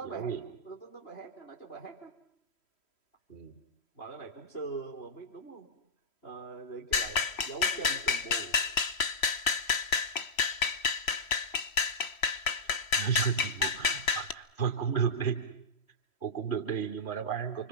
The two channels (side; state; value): right; late; 3.1 ms